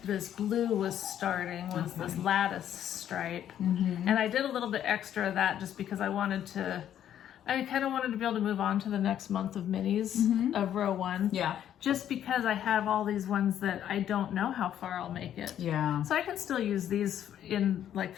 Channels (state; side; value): quieter; right; 10.5 dB